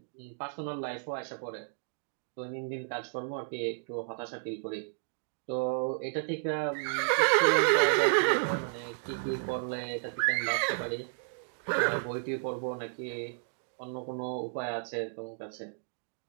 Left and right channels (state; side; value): silent; left; digital silence